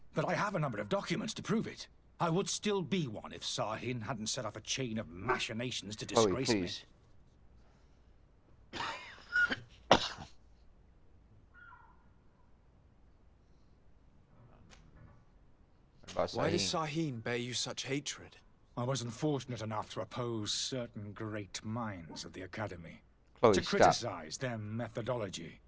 But I have a number of documents to prove it. I would still be one if Sahin hadn't set off a chain of machinations to disgrace me. Why does Sahin bear you such hatred? I wasn't fortunate enough to oppose certain great minds at the Academy. Chloe, to stop. criticize their methodology.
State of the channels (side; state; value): both; identical; correlation 1.00